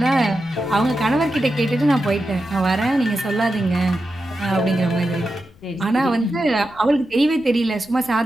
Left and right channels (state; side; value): noise; left; rumble, 26 dB below the sound